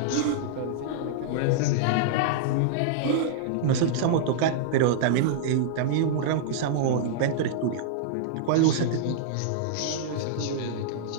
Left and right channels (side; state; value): both; different; correlation -0.02